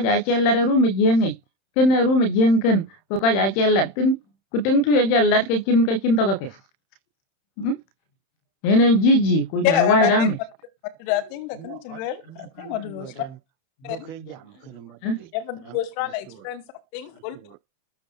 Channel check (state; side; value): late; right; 31 ms